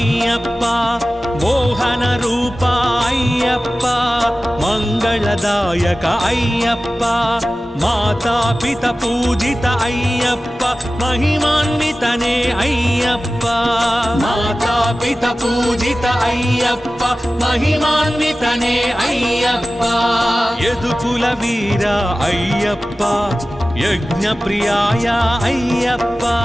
మోహన రూప అయ్యప్ప మంగళదాయక అయ్యప్ప మాతాపిత పూజిత అయ్యప్ప మహిమాన్వితనే అయ్యప్ప మాతాపిత పూజిత అయ్యప్ప మహిమాన్వితనే అయ్యప్ప యదుకుల వీర అయ్యప్ప యజ్ఞ ప్రియాయ అయ్యప్ప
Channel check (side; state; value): both; normal; correlation 0.96